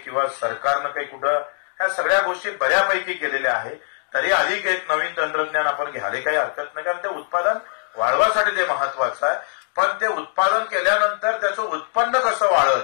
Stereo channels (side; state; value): right; silent; digital silence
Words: सरकारनं काही कुठं, ह्या सगळ्या गोष्टी बऱ्यापैकी केलेल्या आहे. तरी अधिक एक नवीन तंत्रज्ञान आपण घ्यायला काही हरकत नाही, कारण ते उत्पादन वाढवासाठी ते महत्वाचं आहे. पण ते उत्पादन केल्यानंतर त्याचं उत्पन्न कसं वाढल